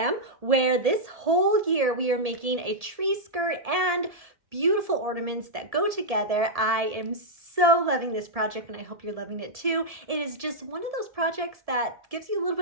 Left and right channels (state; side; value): late; left; 1.7 ms